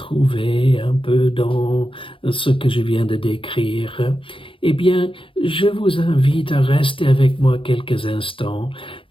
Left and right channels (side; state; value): right; late; 0.25 ms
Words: un peu dans ce que je viens de décrire, eh bien, je vous invite à rester avec moi quelques instants,